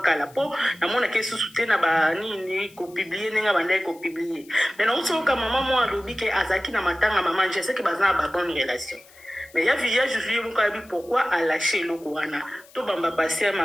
kala po na mona ke susu te na ba nini ko publier nenga banda ko publier. Mais na uso ka maman moi alobi ke azaki na matanga maman je sais que bazana ba bonne relation mais ya via Juju mukabi pourquoi a lâché le wana to bamba passer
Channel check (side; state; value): left; noise; hiss, 25 dB below the sound